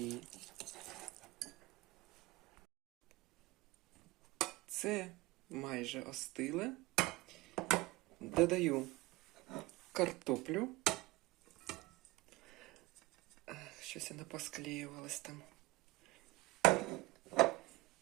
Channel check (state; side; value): quieter; left; 21.0 dB